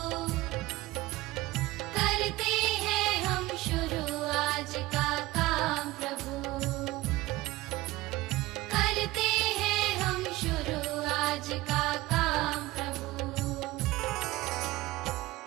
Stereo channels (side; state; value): left; quieter; 18.8 dB